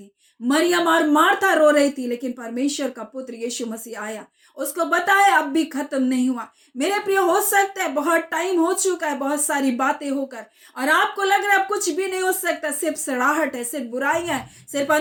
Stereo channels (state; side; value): identical; both; correlation 1.00